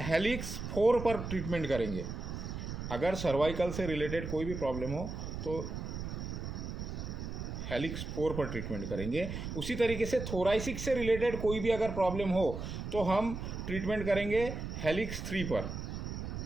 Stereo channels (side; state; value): right; noise; rumble, 6 dB below the sound